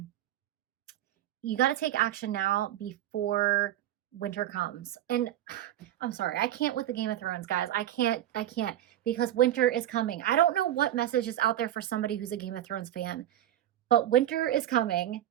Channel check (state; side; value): quieter; left; 12.5 dB